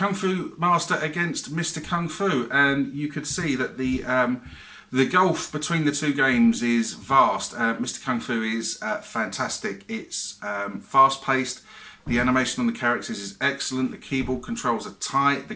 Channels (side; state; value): both; identical; correlation 1.00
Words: Fu Master against Mr. Kung Fu, and you could see that the gulf between the two games is vast. Mr. Kung Fu is fantastic. It's fast-paced. The animation on the characters is excellent. The keyboard controls are tight.